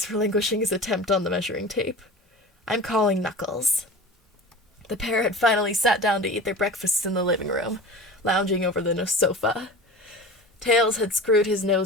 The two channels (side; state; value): both; normal; correlation 0.35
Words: relinquishing his attempt on the measuring tape. "I'm calling Knuckles." The pair had finally sat down to eat their breakfasts in the living room, lounging over the sofa. Tails had screwed his